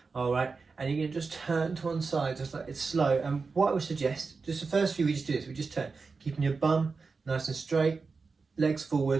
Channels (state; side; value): quieter; left; 4.5 dB